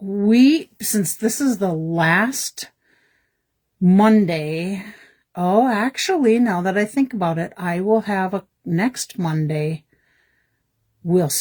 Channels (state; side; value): identical; both; correlation 1.00